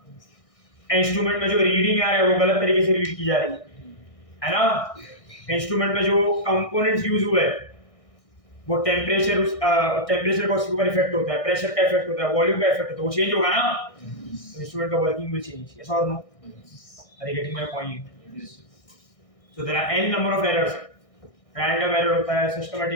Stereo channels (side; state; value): right; late; 1.6 ms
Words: इंस्ट्रूमेंट में जो रीडिंग आ रहा है वो गलत तरीके से रीड की जा रही है ना? इंस्ट्रूमेंट में जो कंपोनेंट्स यूज हुए वो टेम्परेचर का उसके ऊपर इफेक्ट होता है, प्रेशर का इफेक्ट होता है, वॉल्यूम का इफेक्ट होता है, वो चेंज होगा ना, तो इंस्ट्रूमेंट का वर्किंग विल चेंज, यस और no? Are you getting my point? So there are n number of errors. Random error होता है,